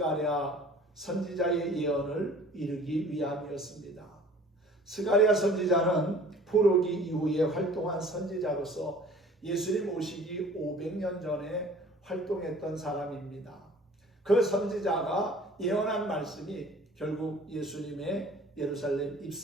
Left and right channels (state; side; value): normal; both; correlation 0.49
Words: 선지자의 예언을 이루기 위함이었습니다. 스가랴 선지자는 포로기 이후에 활동한 선지자로서 예수님 오시기 500년 전에 활동했던 사람입니다. 그 선지자가 예언한 말씀이 결국 예수님의 예루살렘